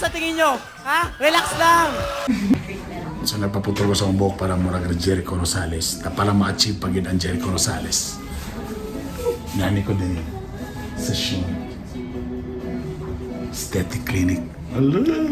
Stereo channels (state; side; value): identical; both; correlation 1.00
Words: tingin nyo? Ha? Relax lang! So nagpaputol ko sa akong buhok para murag Jericho Rosales. Na pala ma-achieve pag yun ang Jericho Rosales. Nani ko din sa show. Aesthetic clinic.